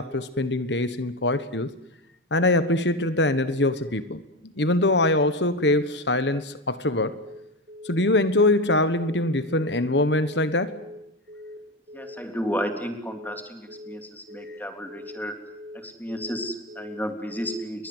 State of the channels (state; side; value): normal; both; correlation 0.19